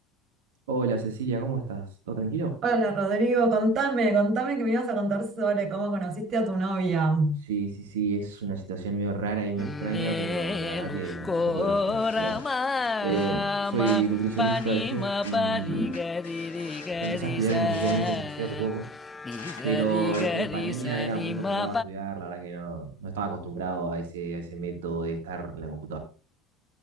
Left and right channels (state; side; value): normal; both; correlation 0.42